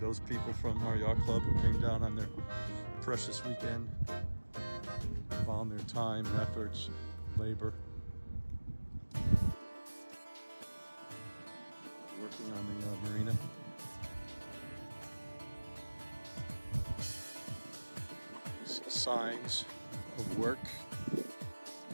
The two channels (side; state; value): both; inverted; correlation -1.00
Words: people from our yacht club who came down on their precious weekend. Found their time and efforts, labor. Working on the marina. You see signs of work.